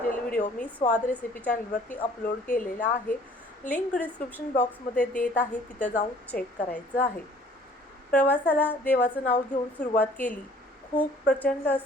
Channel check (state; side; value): normal; both; correlation 0.55